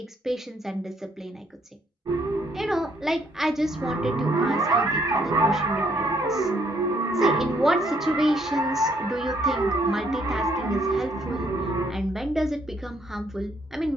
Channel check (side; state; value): both; normal; correlation 0.69